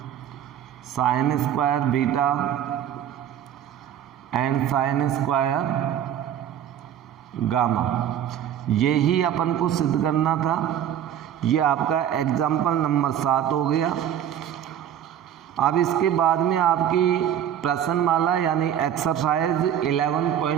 sine square beta and sine square gamma. यही अपन को सिद्ध करना था। ये आपका एग्जाम्पल नंबर 7 हो गया। अब इसके बाद में आपकी प्रश्नमाला यानी एक्सरसाइज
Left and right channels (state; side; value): quieter; left; 10.1 dB